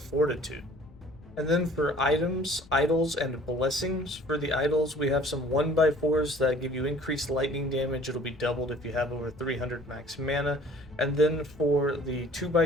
And then for items, idols, and blessings, for the idols we have some 1x4s that give you increased lightning damage. It'll be doubled if you have over 300 max mana. And then for the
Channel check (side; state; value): left; noise; rumble, 22 dB below the sound